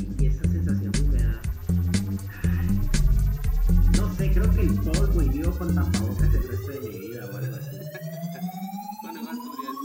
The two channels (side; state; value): both; identical; correlation 1.00